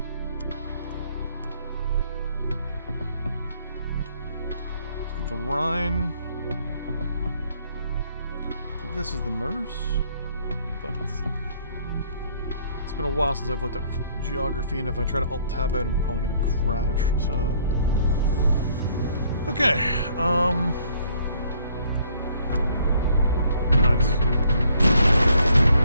Let's get the Rhine. I think this is the Meuse, but it's been a while since I've looked at geography, and if I try to alt-tab out, I'm probably going to crash, so... Okay, nice.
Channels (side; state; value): both; inverted; correlation -0.64